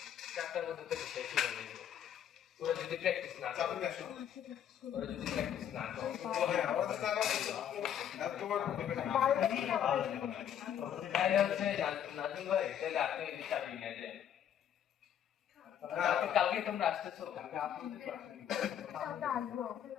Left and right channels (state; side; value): quieter; right; 9.6 dB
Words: 4টার মধ্যে থেকে শেষ হয়ে যাবে। ওরা যদি প্র্যাকটিস না চাবি করে, আসো ওরা যদি প্র্যাকটিস না করে হ্যাঁ আমাদের টাকা আর তোমার তাহলে হচ্ছে নাজুল ভাই তাহলে আপনি এই চাবি নিয়ে যান। কালকে তোমরা আসতেছো?